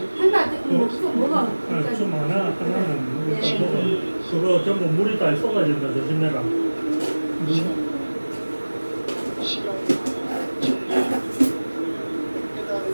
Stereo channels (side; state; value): both; inverted; correlation -1.00